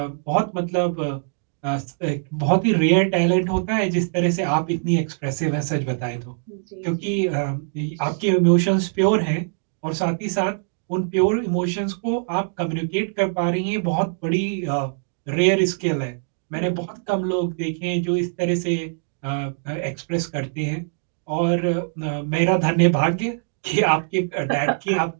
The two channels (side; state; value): left; silent; digital silence